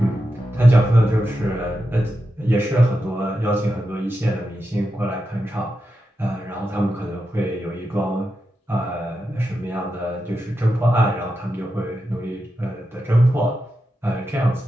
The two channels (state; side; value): normal; both; correlation 0.88